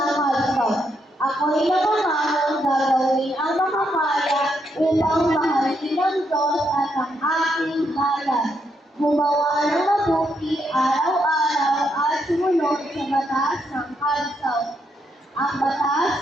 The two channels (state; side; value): normal; both; correlation 0.78